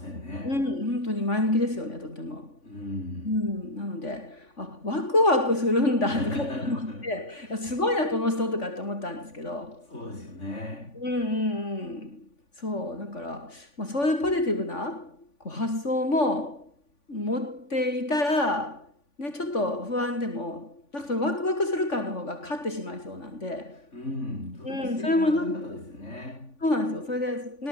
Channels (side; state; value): right; late; 3.5 ms